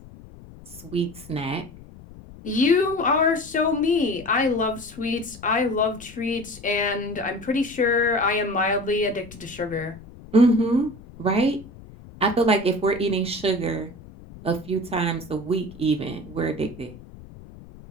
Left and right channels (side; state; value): left; noise; rumble, 19 dB below the sound